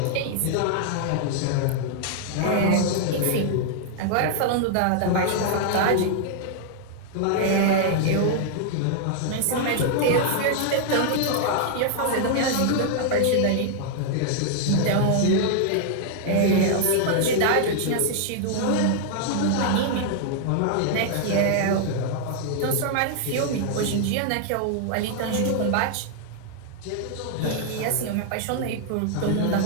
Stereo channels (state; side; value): different; both; correlation -0.01